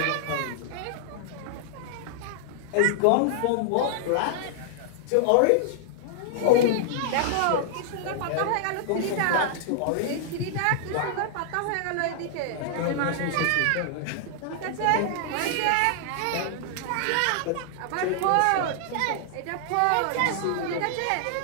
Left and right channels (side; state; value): both; different; correlation -0.01